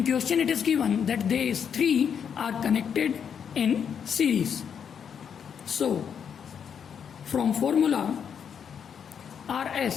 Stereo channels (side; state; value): right; quieter; 7.6 dB